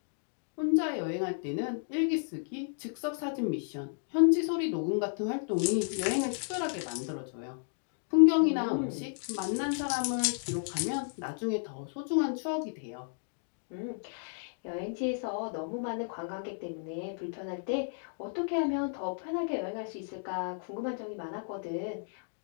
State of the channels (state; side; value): silent; right; digital silence